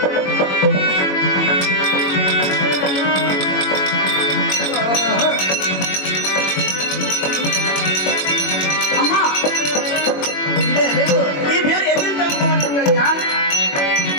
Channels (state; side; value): late; right; 21 ms